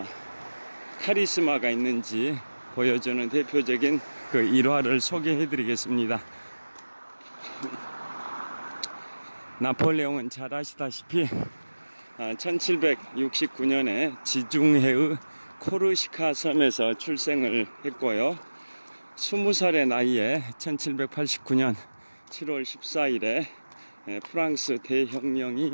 카리스마가 있는지 보여주는 대표적인 그 일화를 소개해 드리겠습니다. 나폴레옹은 잘 아시다시피 1769년에 지중해의 코르시카 섬에서 출생을 했고요. 20살의 나이에 1789년 7월 14일에 프랑스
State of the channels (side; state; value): both; inverted; correlation -1.00